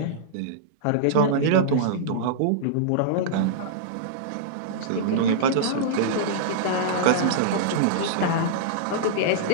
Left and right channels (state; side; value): different; both; correlation -0.02